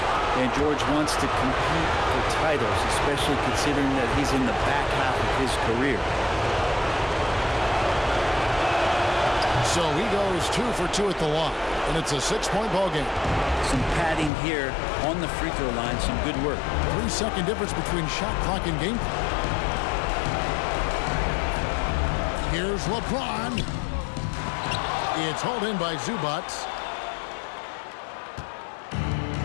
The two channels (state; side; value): drops out; right; at 14.3 s